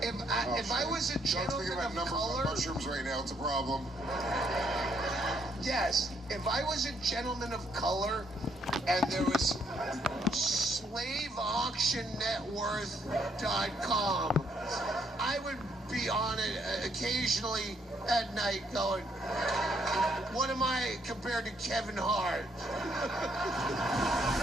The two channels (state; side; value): normal; both; correlation 0.71